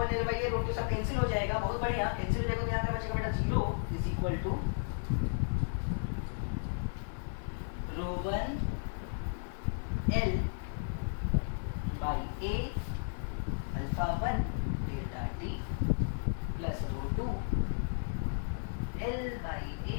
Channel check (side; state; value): right; silent; 55 dB below the other